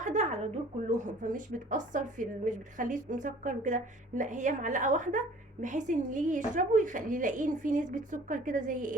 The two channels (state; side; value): normal; both; correlation 0.50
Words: على دول كلهم، فمش بتاثر مش بتخليه مسكر وكده. لا، هي معلقه واحده، بحيث ان اللي يجي يشربه يلاقيه فيه نسبه سكر كده زي